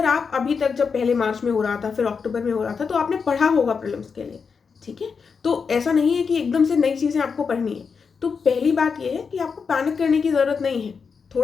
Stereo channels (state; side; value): quieter; right; 5.6 dB